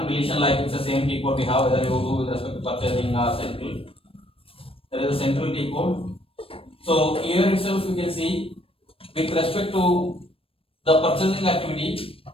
deletion. Like it's the same T code we have whether you do with respect to purchasing or central. There is a central T code. So here itself you can see with respect to the purchasing activity,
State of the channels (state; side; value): late; right; 0.27 ms